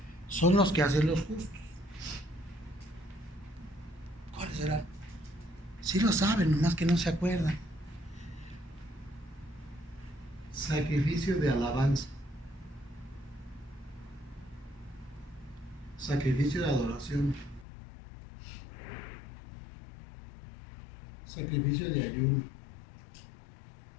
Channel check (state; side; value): drops out; right; at 17.7 s